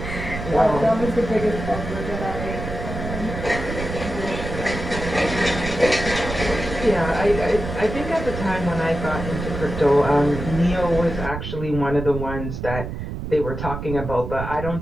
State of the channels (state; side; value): noise; right; rumble, 7 dB below the sound